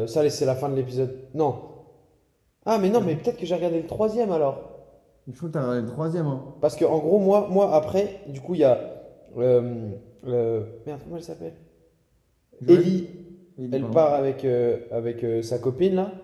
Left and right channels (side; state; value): both; identical; correlation 1.00